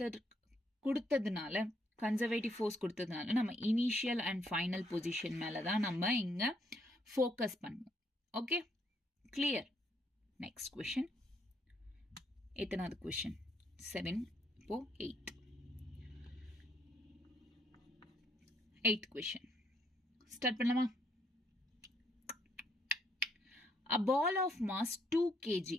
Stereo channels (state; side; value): normal; both; correlation 0.72